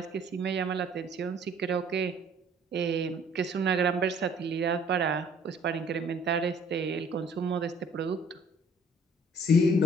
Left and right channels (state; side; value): normal; both; correlation 0.57